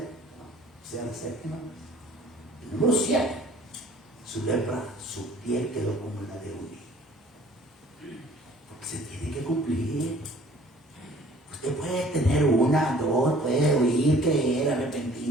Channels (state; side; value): normal; both; correlation 0.53